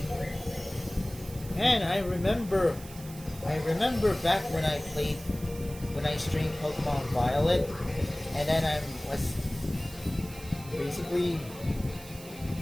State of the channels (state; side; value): noise; right; hiss, 17 dB below the sound